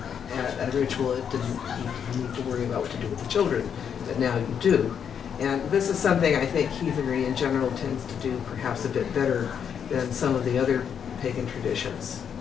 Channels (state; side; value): quieter; right; 7.8 dB